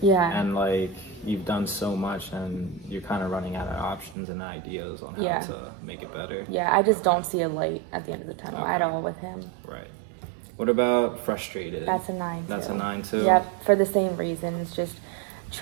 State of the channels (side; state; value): left; drops out; at 4.2 s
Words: And like, you've done so much and you're kind of running out of options and ideas on how Yeah. to make it better. Yeah, I just don't see a light at the end of the tunnel at Okay. all with him. Right. What about frustrated? That's a 9 too. That's a 9 too? Yep, for the same reasons. Just